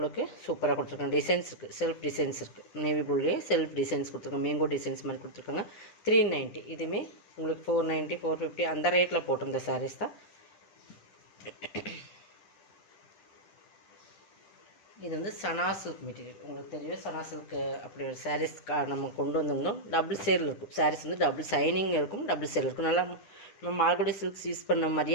சூப்பராக கொடுத்துருக்காங்க. டிசைன்ஸ் இருக்குது, செல்ஃப் டிசைன்ஸ் இருக்குது. நேவி ப்ளூலேயே செல்ஃப் டிசைன்ஸ் கொடுத்துருக்காங்க. மேங்கோ டிசைன்ஸ் மாதிரி கொடுத்துருக்காங்க. 390. இதுவுமே உங்களுக்கு 490, 450 அந்த ரேட்டில் போட்டிருந்த சாரீஸ் தான். இது வந்து சனா சில்க் மெட்டீரியல். உங்களுக்கு தெரியும் சனா சில்க் அப்படி ஒரு சாரீஸ் நம்ம கொண்டு வந்திருந்தோம். டபுள் சேரில் இருக்கும் சாரீஸ் வந்து, டபுள் சைனிங் இருக்கும், டபுள் சேரில் இருக்கும். நல்லா நம்ம மார்கோடி சில்க்ஸ் யூஸ் பண்ண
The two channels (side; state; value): right; late; 10 ms